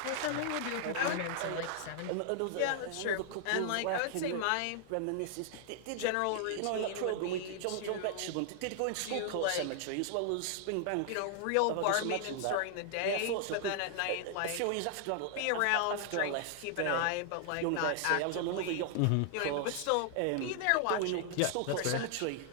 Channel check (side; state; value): both; different; correlation 0.00